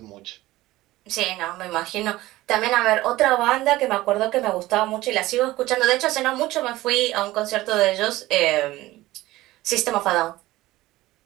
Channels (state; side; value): quieter; left; 17.5 dB